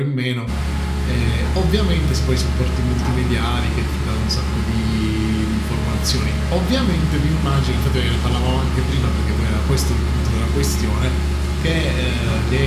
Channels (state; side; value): identical; both; correlation 1.00